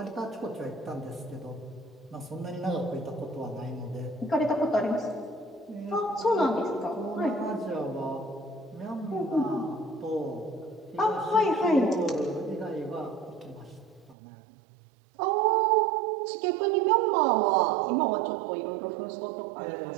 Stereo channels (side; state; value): left; drops out; at 14.2 s